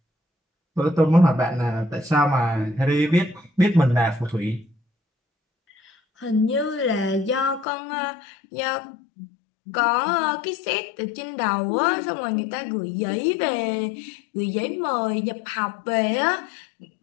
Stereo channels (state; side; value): drops out; right; at 7.7 s